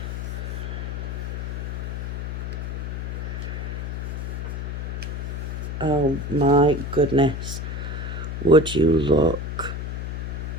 Oh my goodness, would you look?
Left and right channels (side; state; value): left; noise; hum, 4 dB below the sound